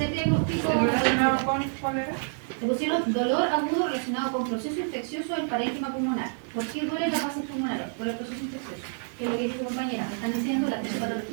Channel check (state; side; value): silent; left; 59 dB below the other